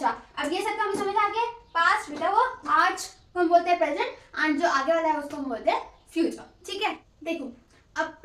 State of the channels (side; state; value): both; identical; correlation 1.00